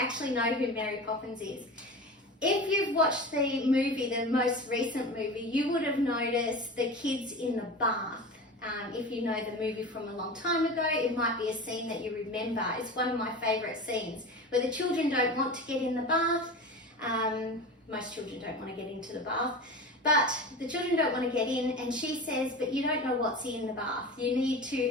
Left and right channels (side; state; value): both; normal; correlation 0.31